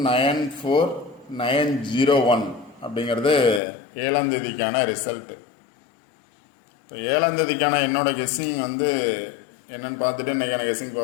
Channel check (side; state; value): right; drops out; at 3.6 s